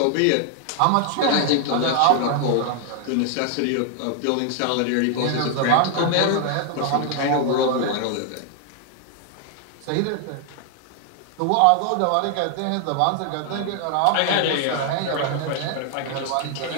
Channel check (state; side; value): different; both; correlation 0.00